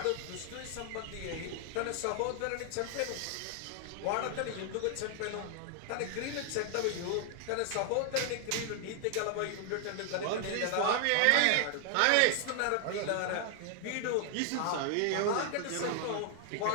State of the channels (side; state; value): both; different; correlation 0.00